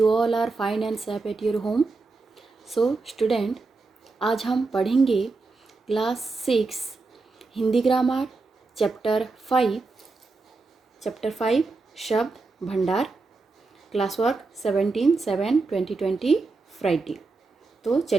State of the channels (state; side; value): quieter; left; 3.8 dB